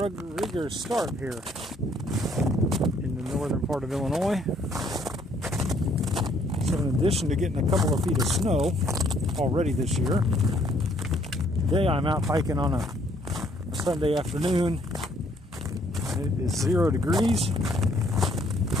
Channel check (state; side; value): normal; both; correlation 0.65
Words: rigorous start here in the northern part of Illinois. So in addition to getting a couple of feet of snow already this year, today I'm out hiking on a Sunday afternoon. It is 0 degrees